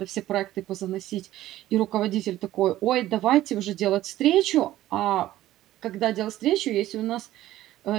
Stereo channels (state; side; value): quieter; left; 14.6 dB